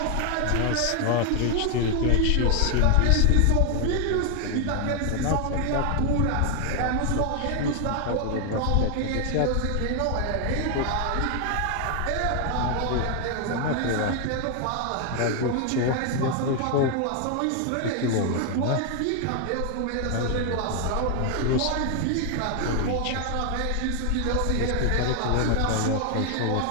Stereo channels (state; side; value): different; both; correlation 0.00